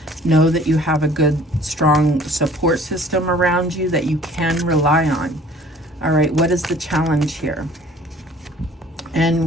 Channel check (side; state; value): both; normal; correlation 0.52